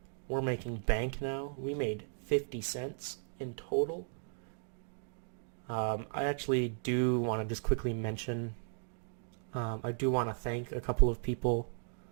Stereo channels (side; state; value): left; silent; digital silence